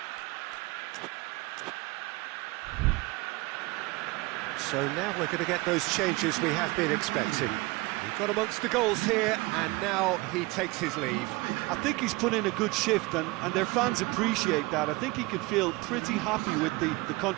So now we're going to get those changes we have been expecting. We've got amongst the goals here, and now he takes his leave. I think he's put in a good shift, and their fans appreciate that. I think he can feel pretty happy with the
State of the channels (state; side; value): quieter; left; 23.1 dB